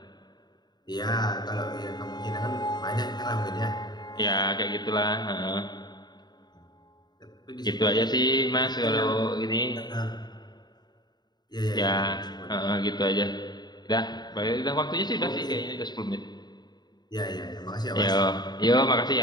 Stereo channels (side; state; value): right; late; 0.20 ms